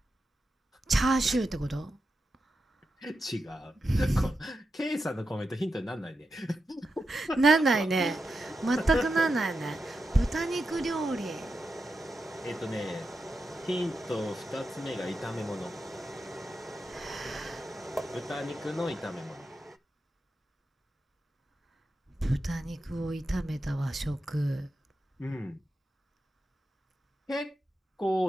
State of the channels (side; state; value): both; normal; correlation 0.88